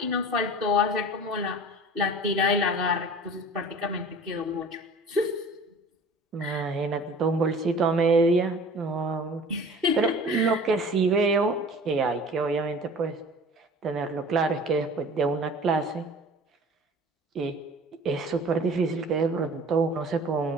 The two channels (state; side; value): normal; both; correlation 0.43